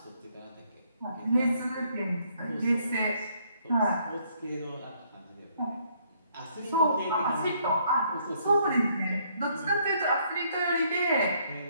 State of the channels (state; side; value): inverted; both; correlation -0.68